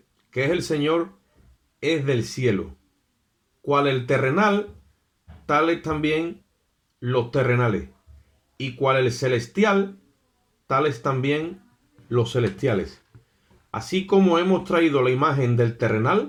que es el Señor, es del cielo. Cual el terrenal, tales también los terrenales. Y cual el celestial, tales también los celestiales. Así como hemos traído la imagen del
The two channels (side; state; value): both; identical; correlation 1.00